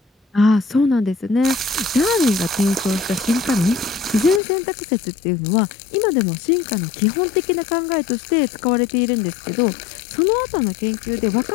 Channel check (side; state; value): right; drops out; at 4.4 s